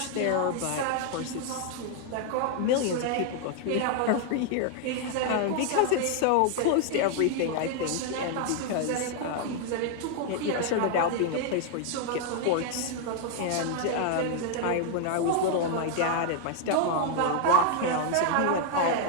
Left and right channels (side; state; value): both; different; correlation 0.00